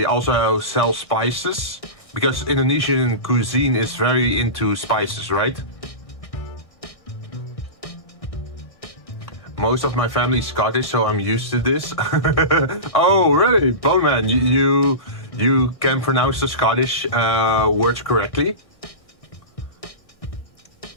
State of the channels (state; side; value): late; right; 1.6 ms